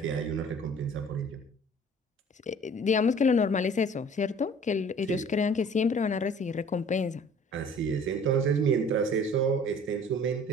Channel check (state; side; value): normal; both; correlation 0.49